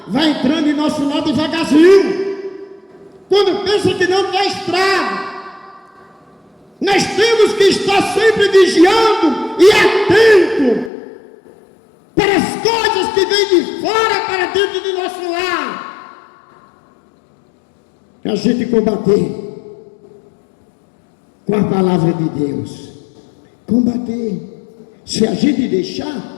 vai entrando em nosso lado devagarzinho. Quando pensa que não tem estrago. Nós temos que estar sempre vigiando e atento para as coisas que vêm de fora para dentro do nosso lar. A gente combater com a palavra de Deus. Combater. Se a gente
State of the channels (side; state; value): right; drops out; at 10.9 s